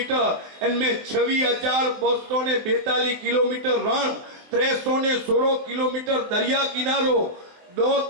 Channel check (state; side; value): late; left; 23 ms